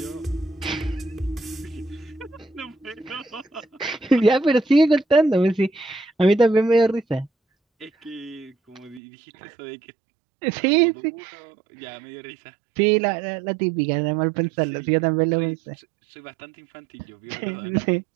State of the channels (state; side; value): drops out; left; at 9.0 s